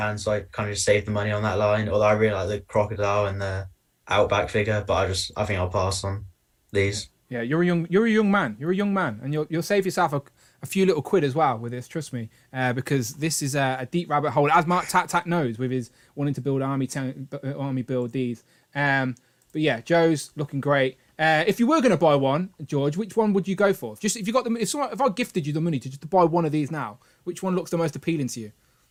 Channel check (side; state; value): both; identical; correlation 1.00